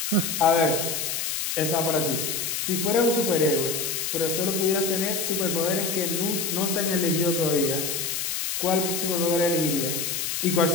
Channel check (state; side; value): noise; left; hiss, 2 dB below the sound